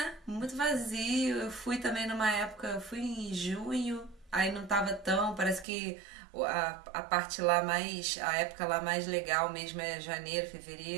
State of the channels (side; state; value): left; drops out; at 5.7 s